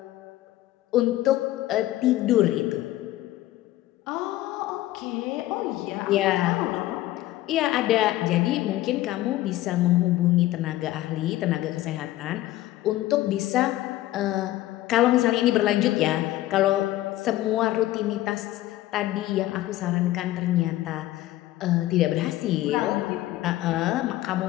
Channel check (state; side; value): quieter; right; 15.6 dB